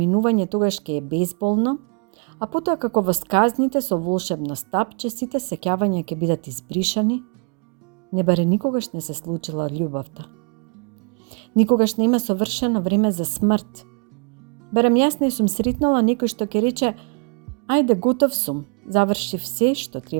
тогаш ќе е безболно, а потоа како во сказните со волшебно стапче сите сеќавања ќе бидат избришани, не баре никогаш не се случила љубовта. Никогаш нема совршено време за смрт. Барем јас не сум сретнала некој што ќе рече: ајде, готов сум, завршив се што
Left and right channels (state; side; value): quieter; left; 36.0 dB